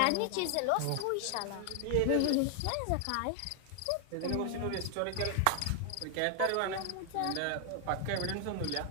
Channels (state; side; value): different; both; correlation 0.00